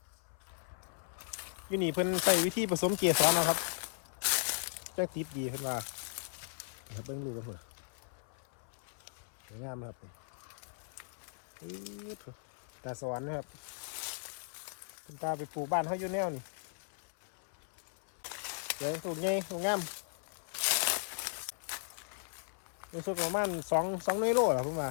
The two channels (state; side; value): silent; right; 53 dB below the other